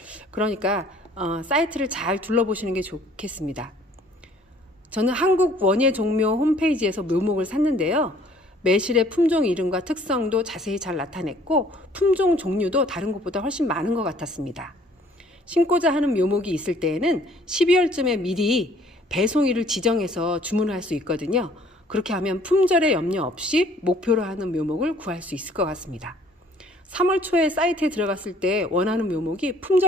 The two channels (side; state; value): both; normal; correlation 0.57